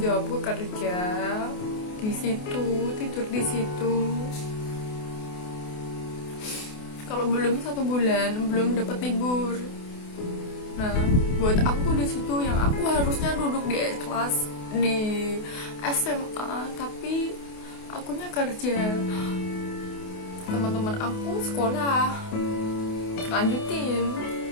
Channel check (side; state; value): right; late; 28 ms